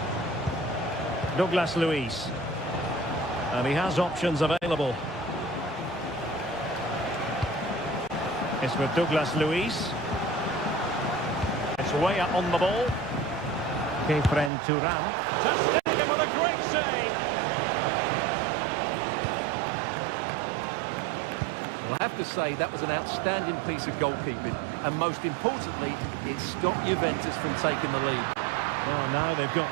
Douglas Luiz. And he has options available. It's with Douglas Luiz. It's Weah on the ball. Kefren Turam. Ter Stegen with a great save. Well, I have to say that was an outstanding piece of goalkeeping. And most importantly, it stopped Juventus from taking the lead. Well, now they've got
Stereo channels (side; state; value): left; drops out; at 14.5 s